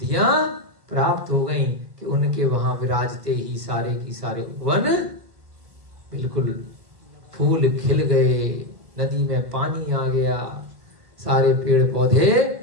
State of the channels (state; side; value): late; left; 1.6 ms